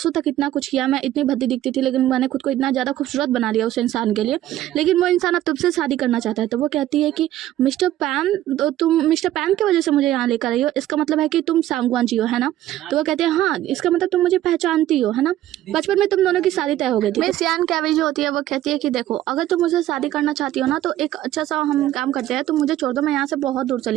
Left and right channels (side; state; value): left; quieter; 13.6 dB